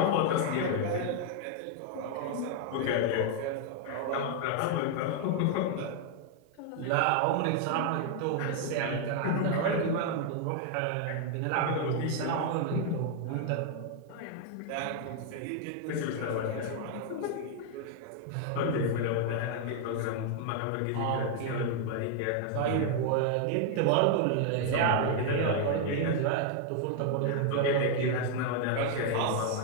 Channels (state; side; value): different; both; correlation 0.00